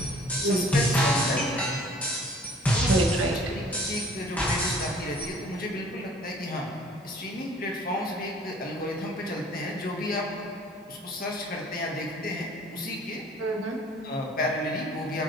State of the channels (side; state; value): both; normal; correlation 0.53